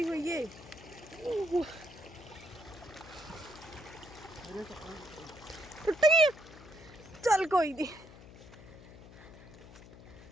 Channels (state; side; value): noise; left; hum, 18 dB below the sound